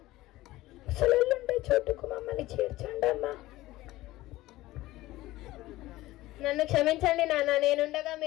ముసలుండే చోటుకు మమ్మల్ని చేర్చండి అమ్మా. నన్ను క్షమించండి నాన్న. నేనుండగా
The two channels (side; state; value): right; quieter; 17.3 dB